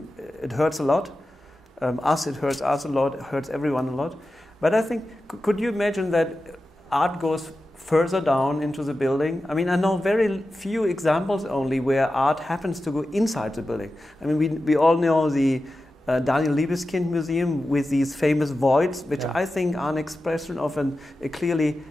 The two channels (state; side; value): normal; both; correlation 0.93